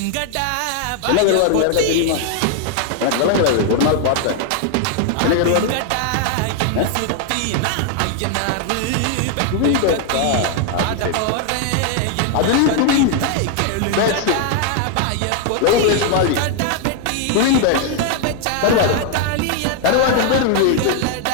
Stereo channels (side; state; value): both; different; correlation 0.00